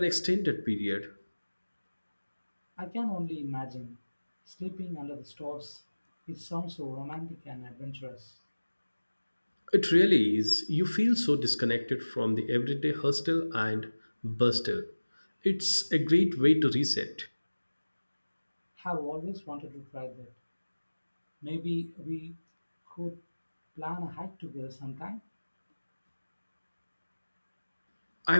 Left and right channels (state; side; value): inverted; both; correlation -1.00